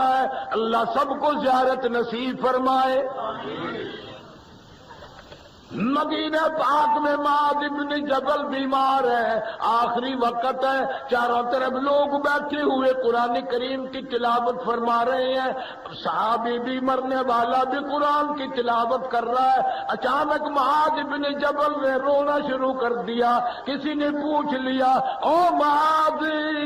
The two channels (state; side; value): identical; both; correlation 1.00